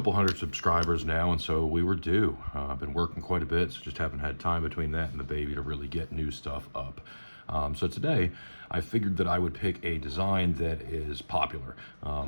hundred subscribers now, and so we were due. I've been working quite a bit, so just haven't had time between that and the baby to really get new stuff up. So today, I figured that I would pick a design that is popular.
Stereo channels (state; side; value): inverted; both; correlation -1.00